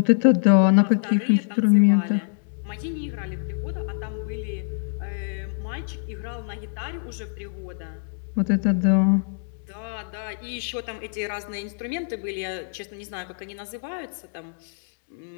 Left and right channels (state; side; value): silent; right; digital silence